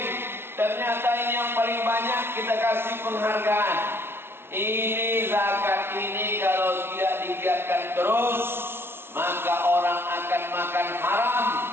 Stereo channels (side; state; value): left; late; 0.12 ms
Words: Ternyata ini yang paling banyak kita kasih penghargaan. Ini zakat ini kalau tidak digiatkan terus, maka orang akan makan haram,